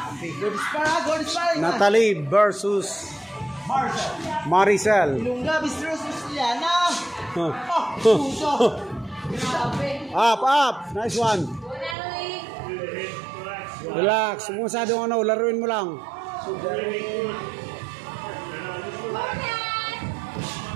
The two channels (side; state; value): left; drops out; at 12.0 s